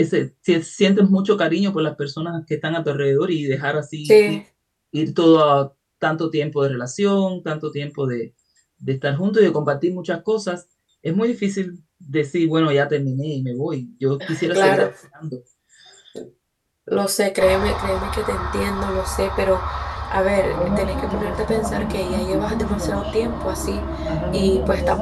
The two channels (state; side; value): identical; both; correlation 1.00